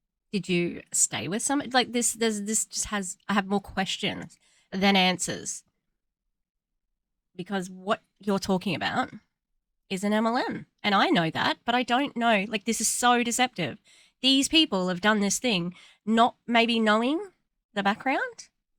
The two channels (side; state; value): both; identical; correlation 1.00